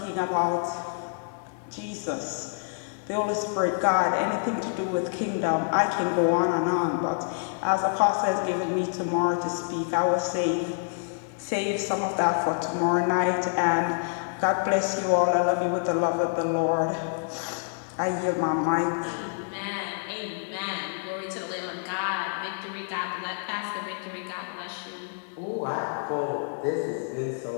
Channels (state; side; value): silent; right; 58 dB below the other